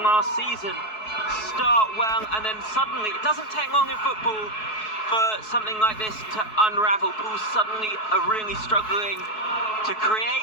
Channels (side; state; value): right; late; 4.7 ms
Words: season. Start well and then suddenly, it doesn't take long in football for something like this to unravel. Pools suddenly are really struggling to create,